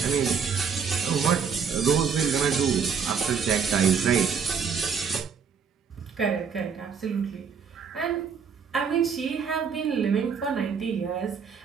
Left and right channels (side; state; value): left; quieter; 6.4 dB